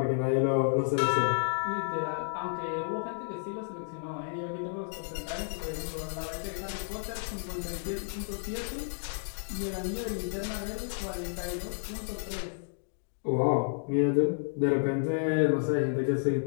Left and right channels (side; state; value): right; silent; digital silence